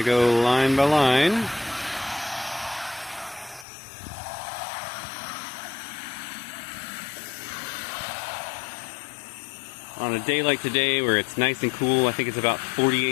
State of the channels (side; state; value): right; drops out; at 3.7 s